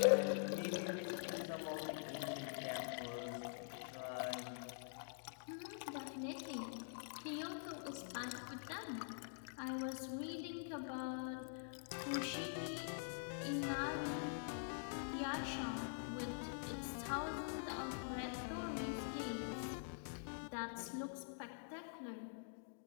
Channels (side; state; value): right; silent; digital silence